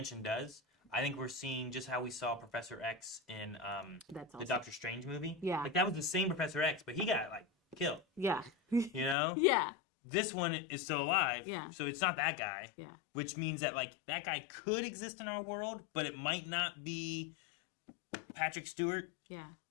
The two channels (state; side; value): drops out; right; at 9.2 s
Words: does. I think we're seeing just how we saw Professor X in That's the awesome. Doctor Strange movie. Yeah. Like that was the same Professor X, but he got like killed. Yeah. You know. Yeah. This one is still alive. Yeah. So it's not that guy. Yeah. Which means that like that guy could exist in our world, but it might not be Patrick Stewart, Yeah.